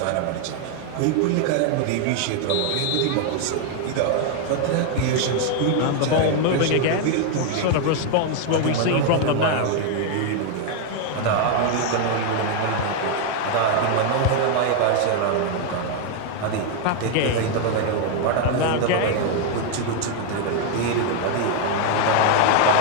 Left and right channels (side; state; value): both; different; correlation 0.00